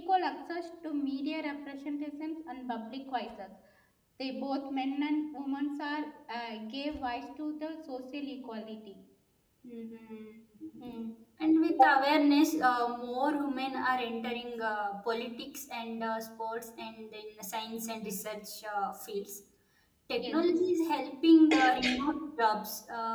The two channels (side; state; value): both; identical; correlation 1.00